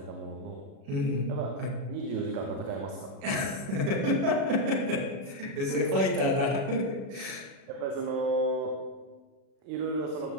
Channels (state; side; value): late; left; 36 ms